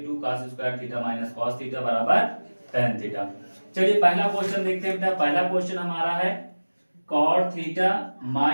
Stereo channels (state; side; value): inverted; both; correlation -1.00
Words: 2 cos square theta minus cos theta बराबर tan थीटा। चलिए पहला question देखते हैं बेटा। पहला क्वेश्चन हमारा है cot theta